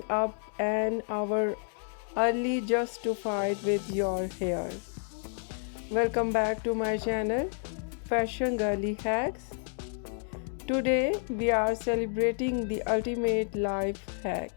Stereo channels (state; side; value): silent; right; 57 dB below the other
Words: up an hour early just to fight with your hair? Welcome back to my channel, Fashion Girly Hacks. Today, we are celebrating the ultimate life hack,